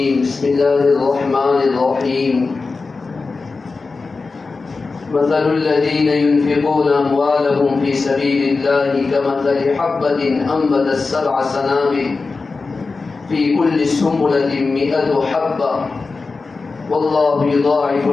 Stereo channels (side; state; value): right; quieter; 4.1 dB